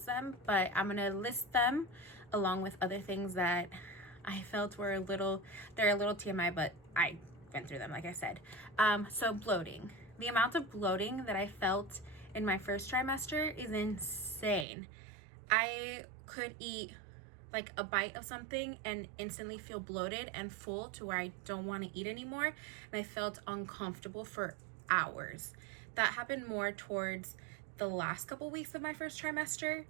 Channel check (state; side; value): drops out; left; at 14.7 s